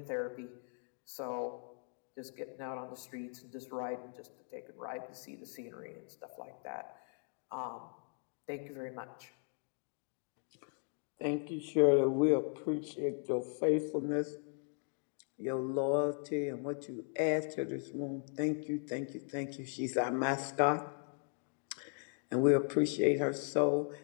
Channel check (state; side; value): silent; right; 53 dB below the other